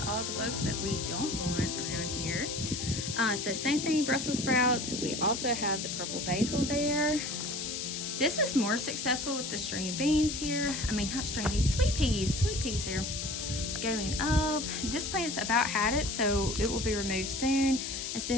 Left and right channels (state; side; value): noise; left; hiss, 4 dB below the sound